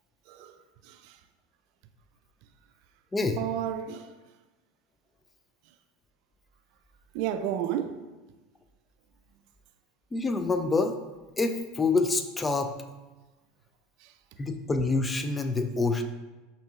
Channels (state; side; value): normal; both; correlation 0.59